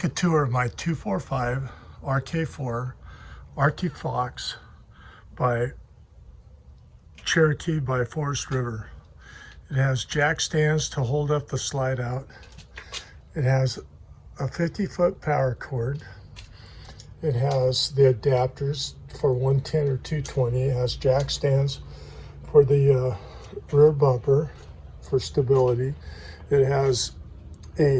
a tour of my 245 RK4 Arctic Fox by Cherokee by Forest River. It has jack stands to hold up the slide out. It has a 50-foot power cord. It has the adapters for 110 or 220. It has jack stands for the rear bumper for stability. It has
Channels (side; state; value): both; identical; correlation 1.00